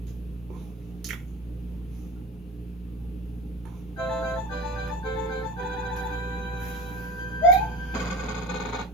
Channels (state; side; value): normal; both; correlation 0.32